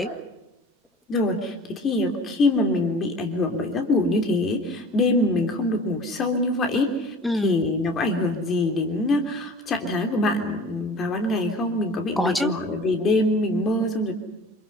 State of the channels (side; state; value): both; normal; correlation 0.43